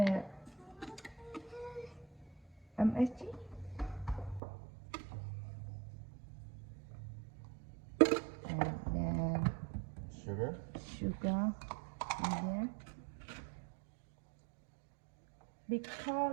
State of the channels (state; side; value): drops out; left; at 4.4 s